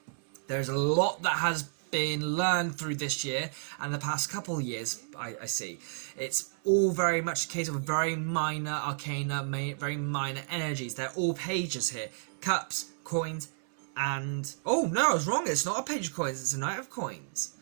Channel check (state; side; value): silent; left; 57 dB below the other